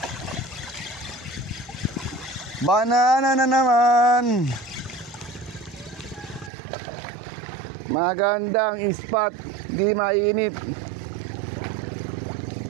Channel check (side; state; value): left; drops out; at 6.5 s